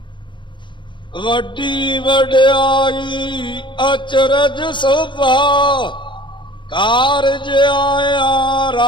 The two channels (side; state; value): right; late; 0.23 ms